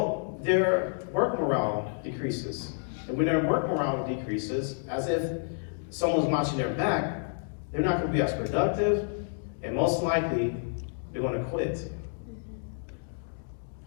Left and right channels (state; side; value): silent; right; digital silence